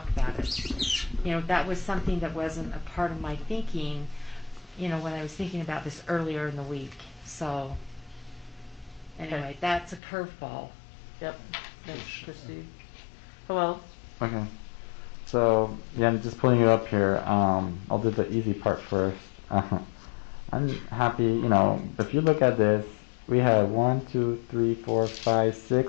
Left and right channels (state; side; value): drops out; right; at 10.0 s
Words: about it. That was something that wasn't a part of my thinking, when I was thinking about this earlier in the week. So, anyway, that's a curveball. Yep. Thanks, Christy. Hello? Okay. So, yeah, I'm just pulling it up here. I'll do the easy part first. I'm happy, if you look at this, we had